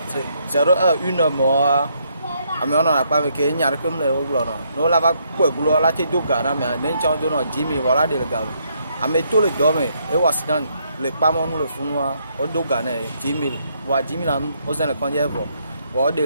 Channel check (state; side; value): inverted; both; correlation -0.73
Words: 01 mois amiona na pa me ke nyar kem le oglo no la va ko gulo la te doga na me nen chon do no jimi wala de ga ame to le do me e wasidan le pa mo no le funwa o doga na jimi wa jimi na o se le konje vo wa de